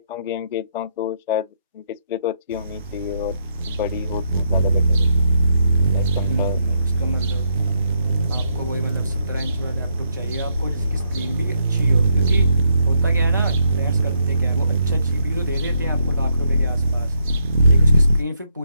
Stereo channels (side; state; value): both; inverted; correlation -0.77